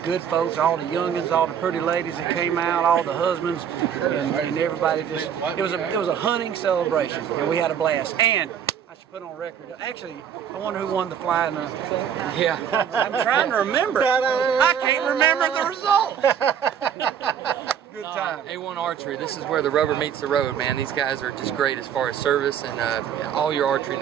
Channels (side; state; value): left; quieter; 8.5 dB